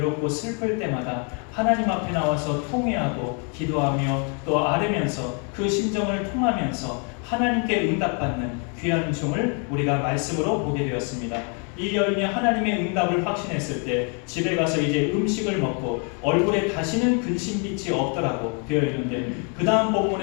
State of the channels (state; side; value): quieter; right; 38.0 dB